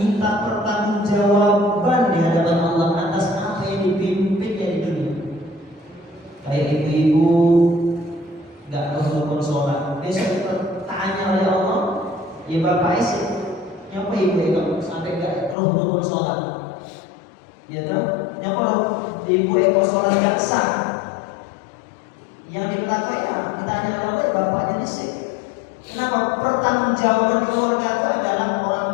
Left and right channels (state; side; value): drops out; right; at 15.6 s